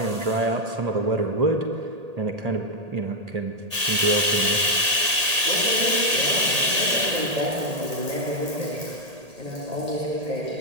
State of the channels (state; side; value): late; left; 1.8 ms